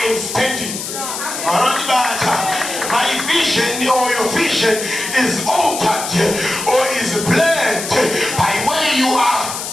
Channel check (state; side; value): noise; left; hiss, 6 dB below the sound